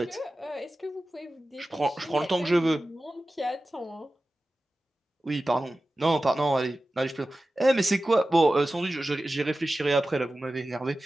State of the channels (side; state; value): both; normal; correlation 0.95